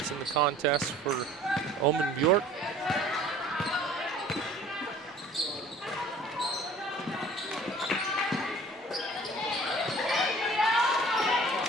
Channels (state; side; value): normal; both; correlation 0.49